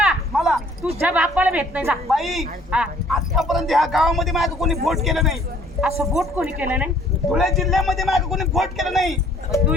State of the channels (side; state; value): both; normal; correlation 0.58